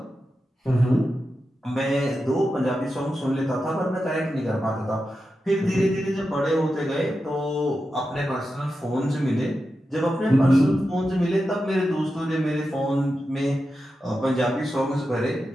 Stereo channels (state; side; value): normal; both; correlation 0.90